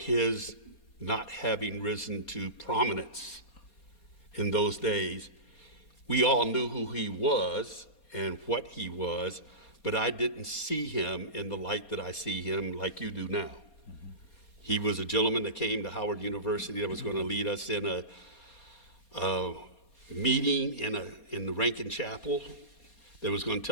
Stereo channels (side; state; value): right; late; 4.2 ms